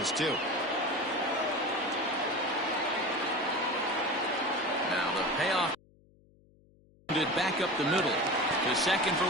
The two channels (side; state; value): left; noise; hum, 30 dB below the sound